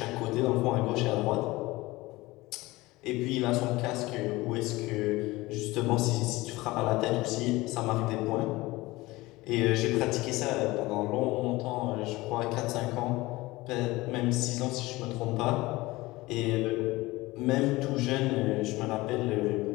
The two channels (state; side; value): quieter; right; 20.3 dB